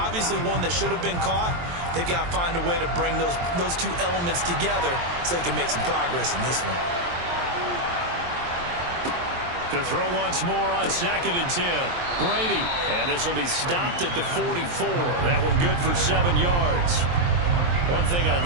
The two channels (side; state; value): left; late; 23 ms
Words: one that should have been caught. They've got to find a way to bring those 2 elements together so they can make some progress in this one. To throw once more on 2nd and 10. Brady, and this will be stopped at the 44. That one good for 7 yards. One thing I